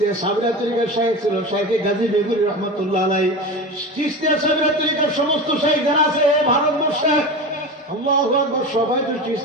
সাবিরিয়া তরিকার শায়েখ ছিল শায়েখে গাজী বেগুরি রহমতুল্লাহ আলাই। চিশতিয়া সাবিরিয়া তরিকার সমস্ত শায়েখ যারা আছে ভারতবর্ষে, আল্লাহু আকবার, সবাই তো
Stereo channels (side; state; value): both; normal; correlation 0.27